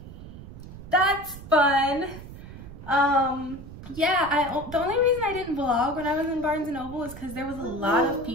that's fun. Yeah, the only reason I didn't vlog when I was in Barnes & Noble is because there was a lot of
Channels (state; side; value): noise; right; rumble, 14 dB below the sound